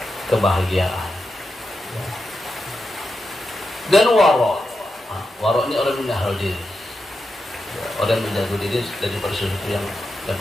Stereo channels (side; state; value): both; normal; correlation 0.88